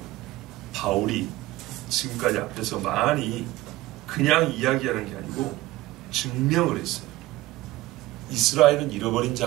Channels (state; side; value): quieter; left; 18.1 dB